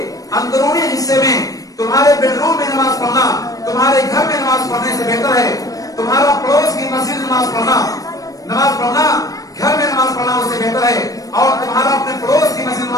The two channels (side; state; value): right; late; 0.17 ms